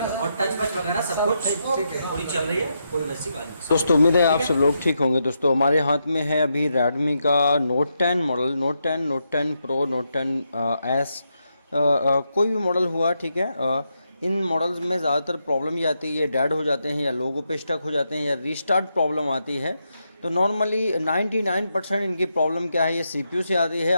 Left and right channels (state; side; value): inverted; both; correlation -0.83